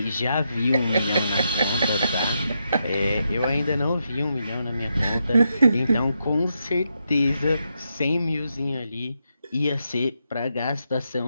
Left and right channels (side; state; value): both; inverted; correlation -0.83